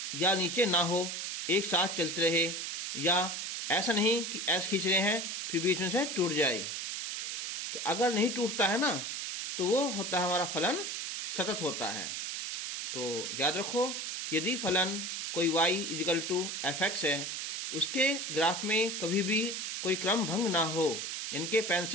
या नीचे ना हो, एक साथ चलते रहे, या ऐसा नहीं कि ऐसे खींच रहे हैं फिर बीच में से टूट जाए। तो अगर नहीं टूटता है ना, तो वो होता है हमारा फलन सतत होता है। तो याद रखो कि यदि फलन कोई y equal to F X है, उसके ग्राफ में कभी भी कोई क्रम भंग ना हो, यानी कि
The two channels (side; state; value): right; noise; hiss, 4 dB below the sound